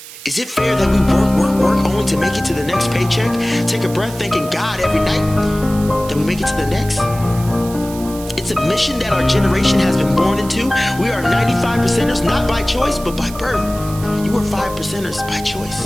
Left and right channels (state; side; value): noise; right; hiss, 16 dB below the sound